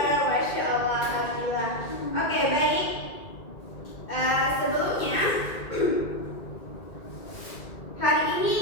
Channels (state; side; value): late; right; 2.1 ms